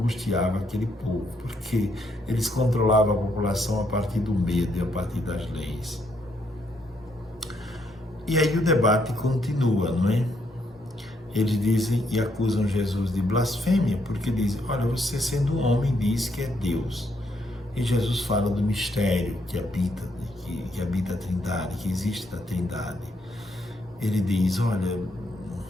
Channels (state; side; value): normal; both; correlation 0.74